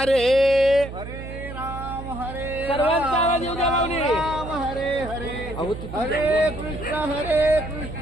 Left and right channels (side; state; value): right; noise; hum, 10 dB below the sound